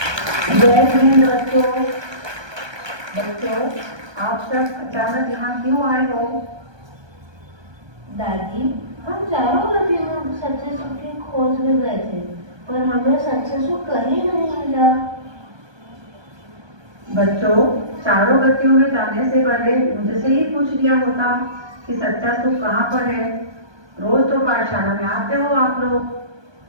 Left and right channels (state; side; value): late; left; 1.2 ms